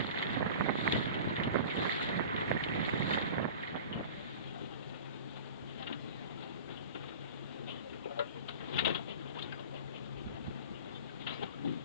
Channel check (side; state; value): both; inverted; correlation -0.37